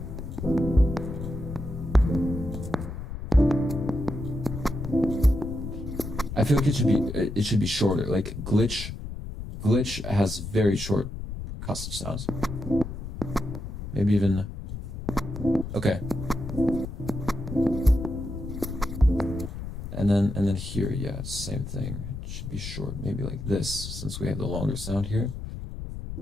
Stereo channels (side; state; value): left; noise; rumble, 8 dB below the sound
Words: I feel like it should be shorter. Like glitch has very short percussive sounds. Maybe even okay. And then here, yeah, same thing. It should be short, maybe like this, since we have the longer sound here.